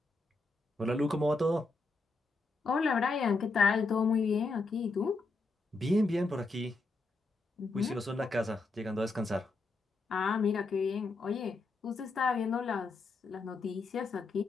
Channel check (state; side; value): quieter; right; 3.5 dB